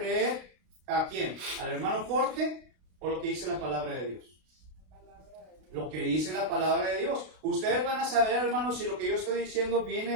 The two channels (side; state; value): left; late; 32 ms